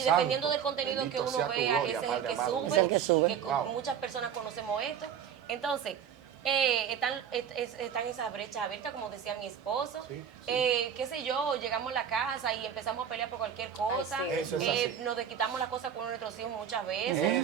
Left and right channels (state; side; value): quieter; left; 8.4 dB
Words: dependiendo santo. del contenido Bendito que uno sea tu vea, gloria, ese es el Padre que amado. sube. Es el que sube. Que Wow. muchas personas conocemos esto. Entonces, están esas brechas abiertas, como decía mi esposo. Sí, Qué sé yo, llegamos a la casa y empezamos a pelear por cualquier cosa. sí. Eso es así. Nos desquitamos las cosas con nuestros hijos muchas veces.